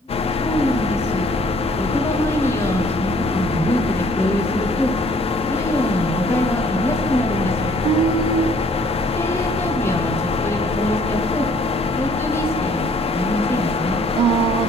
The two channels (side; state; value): both; normal; correlation 0.59